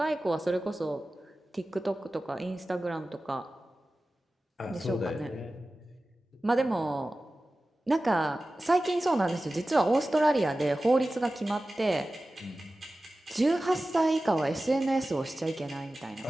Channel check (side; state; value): both; normal; correlation 0.96